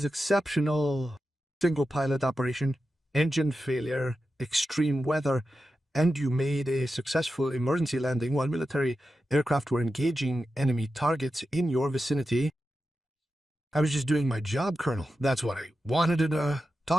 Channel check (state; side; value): normal; both; correlation 0.91